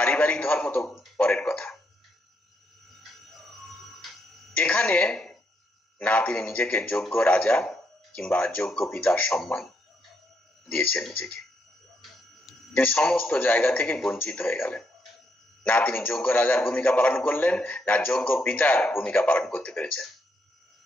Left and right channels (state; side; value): normal; both; correlation 0.78